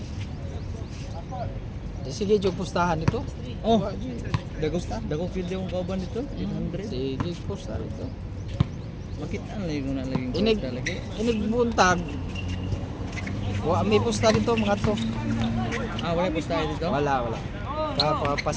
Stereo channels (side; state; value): both; identical; correlation 1.00